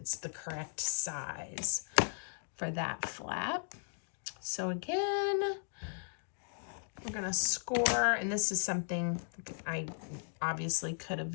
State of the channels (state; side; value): silent; right; digital silence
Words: the correct size for that flap. So again, we're gonna score, and this is something I obviously could